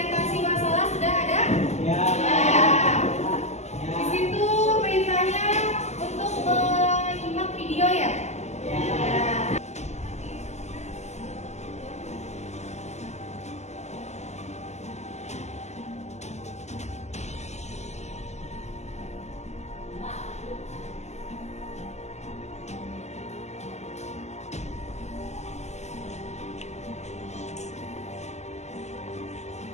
masalah. Sudah ada? Ya. Di situ perintahnya untuk menyimak video ya. Ya.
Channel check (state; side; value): late; right; 0.33 ms